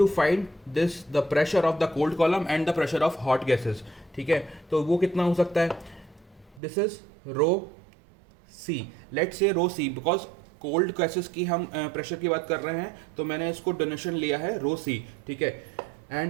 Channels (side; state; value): left; drops out; at 6.6 s